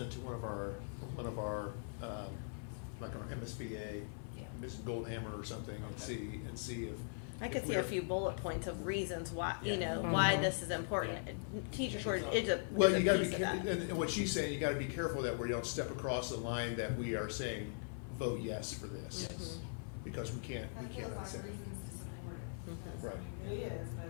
it to one of our, like our MSBA, Yeah. Mrs. Goldhammer or something, Okay. and see I if could see we're- a few bullet points of reasons why, Yeah. you know, Mhm. why this is important. Yeah. Teachers were, it's a. Well, it's a you gotta be, piece of careful, that. and what she's saying, you gotta be careful that we don't step across the line that we are saying, vote yes for this. Yes. Because we That feels cannot like say that. reasons to support it. That's- Right. I mean, it is, but I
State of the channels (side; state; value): right; silent; 51 dB below the other